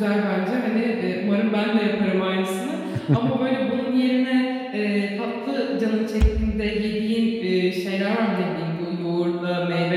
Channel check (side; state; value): both; identical; correlation 1.00